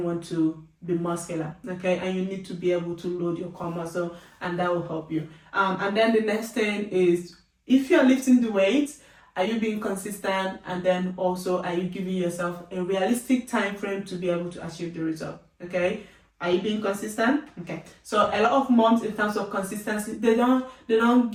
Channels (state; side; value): identical; both; correlation 1.00